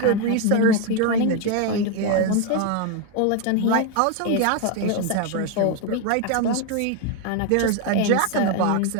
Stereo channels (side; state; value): both; different; correlation 0.01